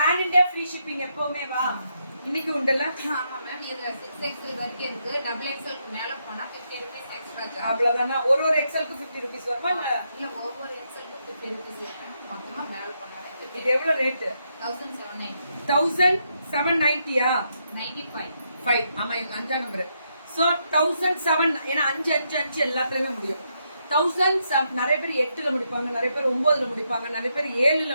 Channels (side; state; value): both; inverted; correlation -0.79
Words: இந்தியா ஃப்ரீ ஷிப்பிங் எப்பவுமே வா. இன்னைக்கு உண்டல்ல? ஆமா மேம். இது 6XL வரைக்கும் இருக்கு. டபுள் எக்ஸ்எல் மேல போனா 50 rupees எக்ஸ்ட்ரா சார்ஜ். அவ்வளவுதானா? ஒரு எக்ஸ்எல்க்கு 50 rupees வருமா? இல்ல ஒவ்வொரு எக்ஸ்எல்க்கு 50 rupees மொத்தமா மேல போனா இது எவ்வளவு ரேட்? 1790. 1790யா? 95. 5. ஆமா இது 5 நம்பர். சோ 1007 ஏனா 5 5 5 எல்லாத்துலயுமே முடியும். 1007 நிறைய பேர் 8ல முடிப்பாங்க, நிறைய பேர் 9ல முடிப்பாங்க, நிறைய பேர் 7ல